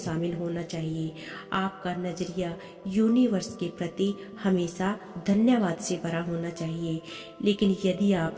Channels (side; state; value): both; identical; correlation 1.00